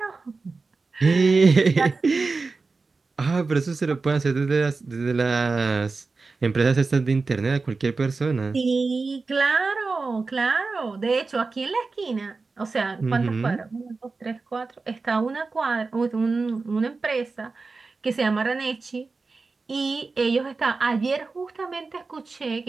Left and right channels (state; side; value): quieter; left; 4.0 dB